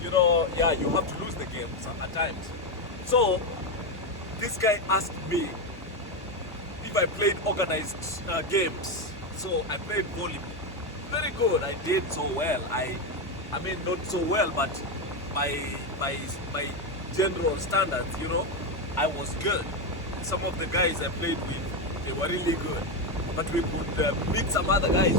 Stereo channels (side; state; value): both; normal; correlation 0.09